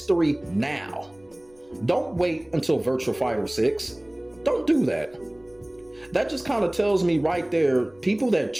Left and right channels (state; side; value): noise; left; rumble, 29 dB below the sound